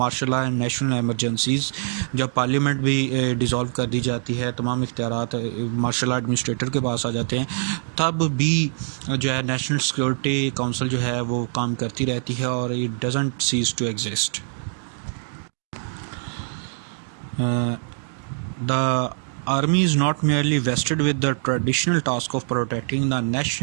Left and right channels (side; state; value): left; silent; digital silence